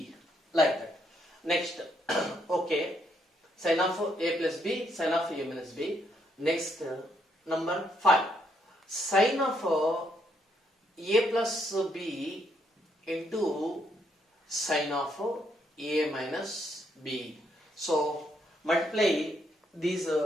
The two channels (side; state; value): both; normal; correlation 0.74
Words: like that. Next, okay, sin of a plus b, sin of a minus b. Next, number 5, sin of a plus b into sin of a minus b. So multiply these